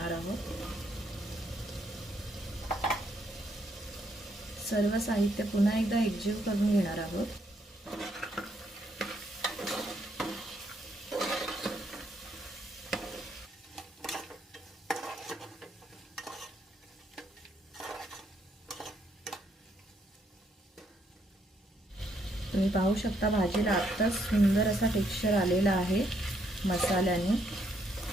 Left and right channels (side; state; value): both; normal; correlation 0.73